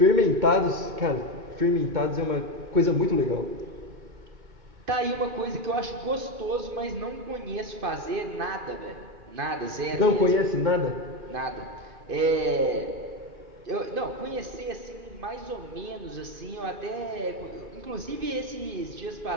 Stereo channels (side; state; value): left; late; 2.5 ms